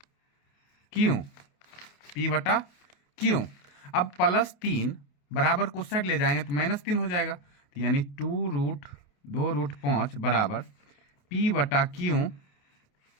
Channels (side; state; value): right; late; 28 ms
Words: p/q। अब +3 बराबर को साइड ले जाएंगे तो -3 हो जाएगा। तो यानी 2√5 बराबर p/q,